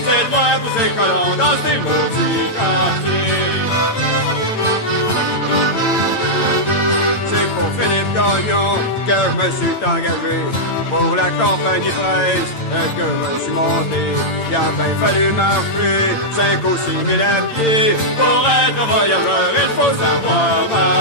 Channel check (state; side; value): late; right; 8.9 ms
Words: C'est de moi pour ces colons dans ces maudits quartiers. C'est pour Philippe Gagnon que je me suis engagé. Pour la compagnie presse que je me suis monté. Il a bien fallu marcher 5 ou 6 000 à pied. Pour être voyageur, il faut savoir